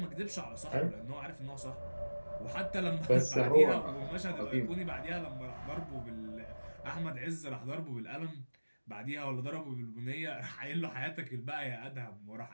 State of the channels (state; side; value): inverted; both; correlation -1.00